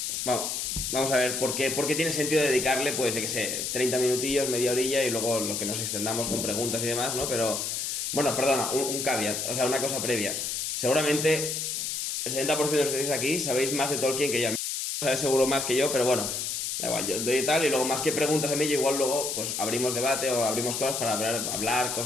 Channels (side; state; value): left; noise; hiss, 2 dB below the sound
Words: vamos a ver, ¿por qué tiene sentido dedicarle, pues, yo qué sé, 30 minutillos, media horilla y luego lo que nos extendamos con preguntas y demás, ¿no? Pero, bueno, perdona, un caveat, o sea, una cosa previa. Seguramente el 70% de los que estáis aquí sabéis más de Tolkien que yo. Sabes seguro más que yo, pero bueno, da igual, yo doy tal y luego más que preguntas a mí, yo igual luego pues abrimos debate o abrimos cosas para hablar